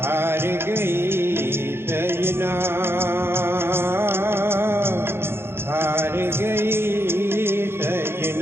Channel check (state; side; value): late; left; 0.11 ms